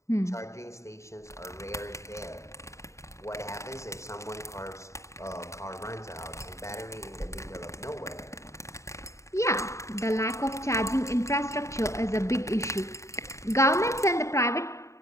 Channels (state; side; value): late; right; 0.14 ms